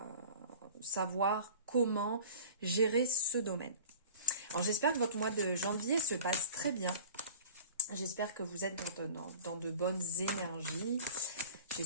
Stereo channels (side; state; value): both; inverted; correlation -0.43